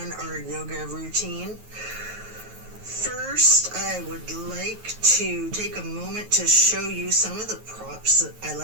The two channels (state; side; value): late; left; 9.3 ms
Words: our yoga routine. First, I would like to take a moment to show you some of the props that I